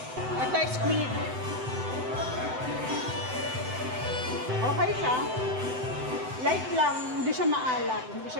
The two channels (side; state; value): left; late; 7.9 ms